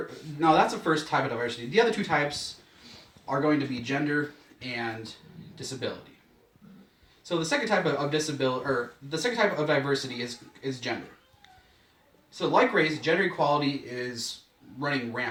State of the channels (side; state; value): both; identical; correlation 1.00